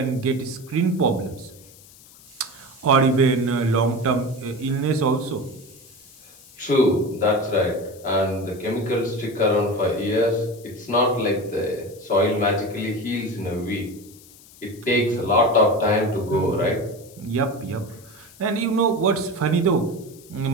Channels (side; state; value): left; noise; hiss, 23 dB below the sound